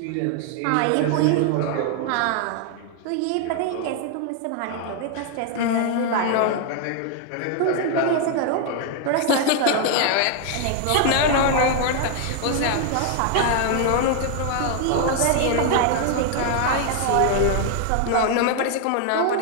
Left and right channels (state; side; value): different; both; correlation 0.00